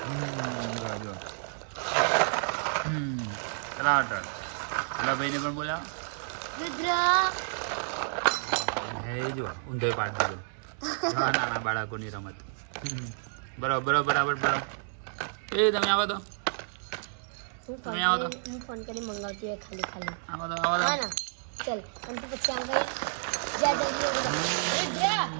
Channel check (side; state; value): left; silent; 58 dB below the other